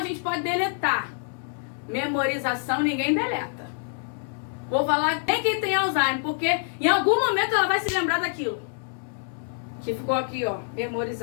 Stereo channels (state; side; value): silent; right; 61 dB below the other